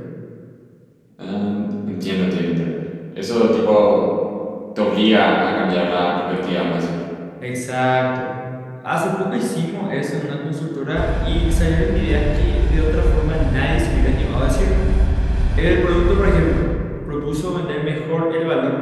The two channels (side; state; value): both; identical; correlation 1.00